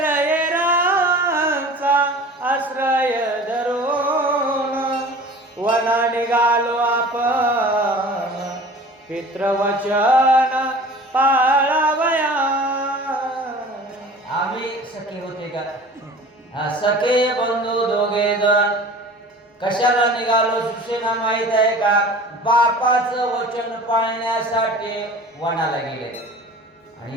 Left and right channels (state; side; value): normal; both; correlation 0.42